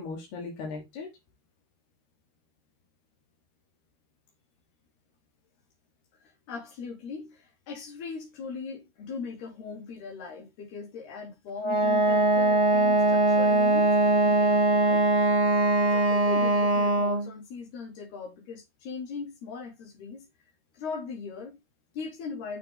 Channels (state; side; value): late; right; 13 ms